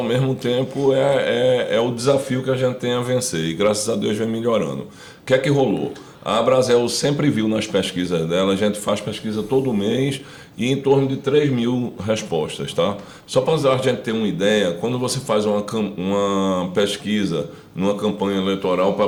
mesmo tempo é o desafio que a gente tem a vencer e graças a Deus vem melhorando. O que é que rolou? A Abrazel sempre viu nas pesquisas dela, a gente faz pesquisa todo mês e em torno de 3 mil respostas, tá? Só para a gente ter uma ideia, quando você faz uma pesquisa numa campanha eleitoral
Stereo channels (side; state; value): both; identical; correlation 1.00